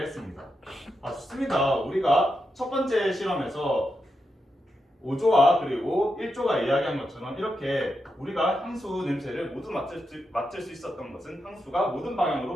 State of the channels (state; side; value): normal; both; correlation 0.86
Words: 했습니다. 좋습니다. 우리가 첫 번째 실험에서 5조와 그리고 1조가 이야기한 것처럼 이렇게 우리가 향수 냄새를 모두 맡을 수 있었던 것은 향수가 모든